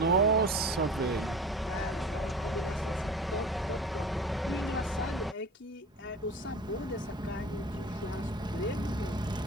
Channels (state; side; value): normal; both; correlation 0.38